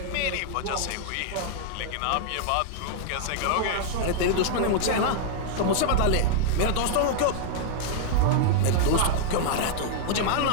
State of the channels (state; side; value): different; both; correlation -0.01